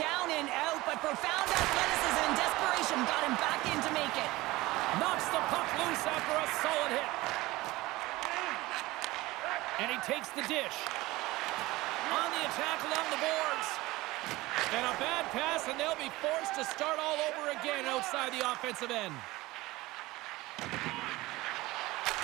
and out, but profound athleticism and desperation got him back in to make it. Knocks the puck loose after a solid hit. And he takes the dish. On the attack along the boards. And a bad pass, and they'll be forced to start all over again outside the offensive end.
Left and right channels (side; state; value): left; quieter; 19.6 dB